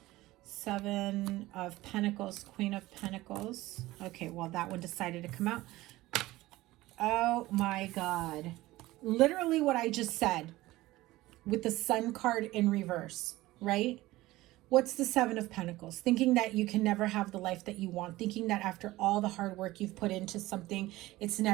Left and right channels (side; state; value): left; quieter; 18.0 dB